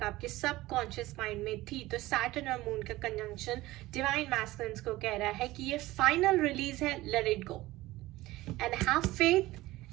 आपके सबकॉन्शियस माइंड में थी तो सैटर्न और मून का कंजंक्शन डिवाइन मैस्कुलिन्स को कह रहा है कि ये फाइनल रिलीज है, let it go and have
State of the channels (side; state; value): left; quieter; 17.9 dB